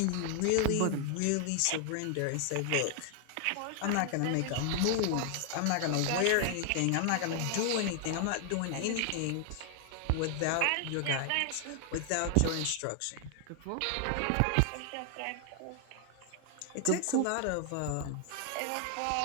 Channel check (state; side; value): different; both; correlation 0.00